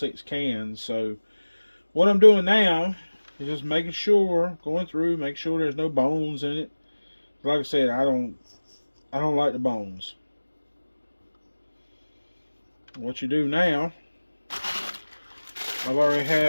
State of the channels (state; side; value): inverted; both; correlation -1.00